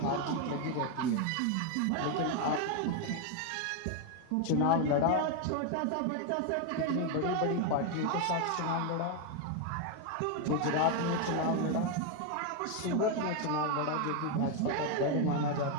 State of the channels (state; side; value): different; both; correlation 0.01